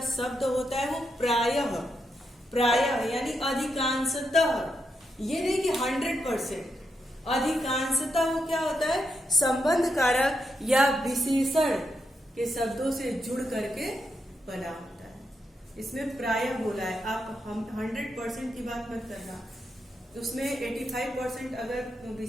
शब्द होता है वो प्रायः, प्रायः यानी अधिकांशतः, ये नहीं कि 100%, अधिकांशतः वो क्या होता है, संबंध कारक या विशेषण के शब्दों से जुड़ करके बना होता है। इसमें प्रायः बोला है, आप हम 100% की बात मत करना, उसमें 85% अगर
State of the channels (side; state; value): both; normal; correlation 0.83